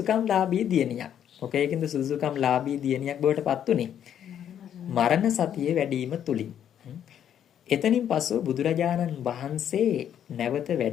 ලාභී දියණියක්. මොකේකින්ද සුදුසුකම් ලාභී දියණියක් බවට පත් උනේ? මරණ සතිය වැඩිම තුලින්. එතනින් පසු බුදුරජාණන් වහන්සේ නැවත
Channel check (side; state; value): right; quieter; 9.7 dB